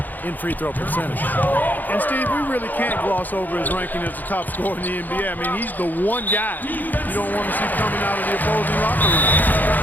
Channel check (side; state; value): right; late; 0.085 ms